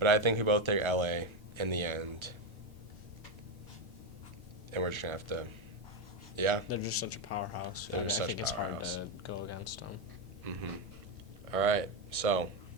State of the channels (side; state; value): both; normal; correlation 0.09